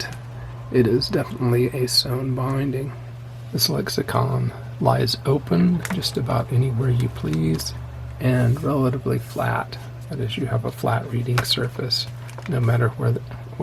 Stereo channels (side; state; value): both; identical; correlation 1.00